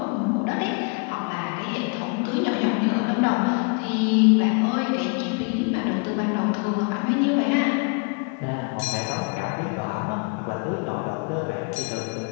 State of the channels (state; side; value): quieter; right; 33.8 dB